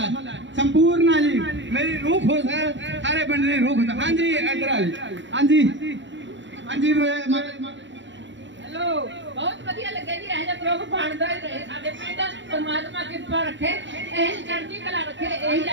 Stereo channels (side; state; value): left; late; 0.53 ms